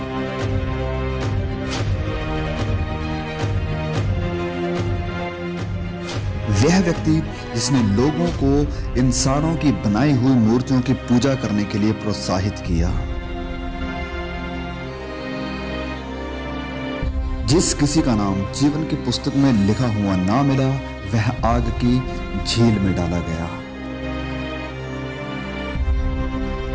वह व्यक्ति जिसने लोगों को इंसानों की बनाई हुई मूर्तियों की पूजा करने के लिए प्रोत्साहित किया। जिस किसी का नाम जीवन की पुस्तक में लिखा हुआ ना मिला, वह आग की झील में डाला गया।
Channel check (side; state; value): both; identical; correlation 1.00